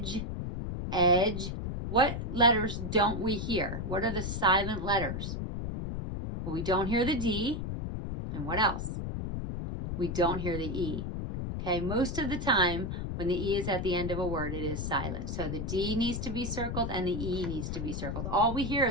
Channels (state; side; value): noise; left; rumble, 4 dB below the sound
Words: edge. What letters don't we hear? What are the silent letters? Well, we don't hear the D. And what else? We don't hear the E. Okay, most of the time when the E is at the end of a word, it is silent. So the D needs to be circled and the E needs to be circled. All we hear